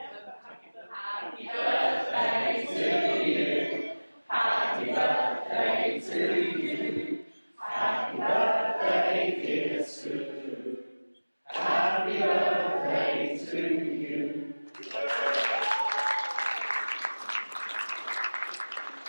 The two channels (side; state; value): both; inverted; correlation -1.00